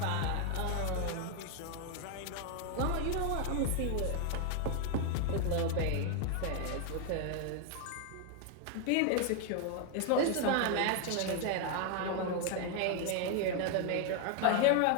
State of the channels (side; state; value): both; different; correlation 0.00